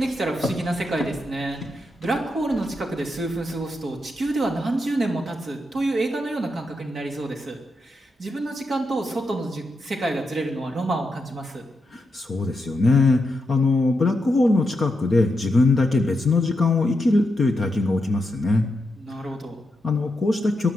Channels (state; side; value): normal; both; correlation 0.84